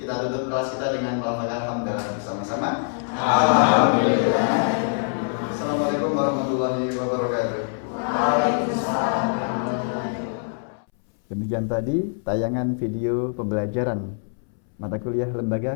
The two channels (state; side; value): silent; right; 63 dB below the other